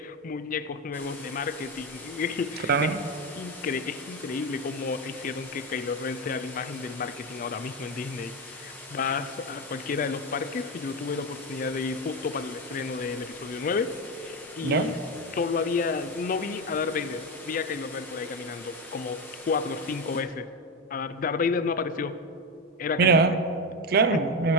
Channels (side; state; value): both; normal; correlation 0.13